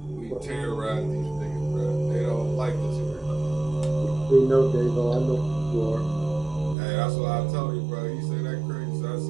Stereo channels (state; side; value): drops out; left; at 6.8 s